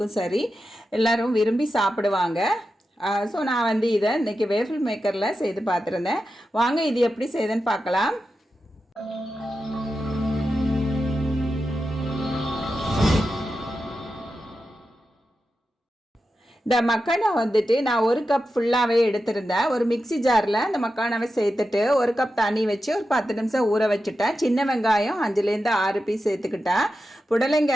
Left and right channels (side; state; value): both; normal; correlation 0.90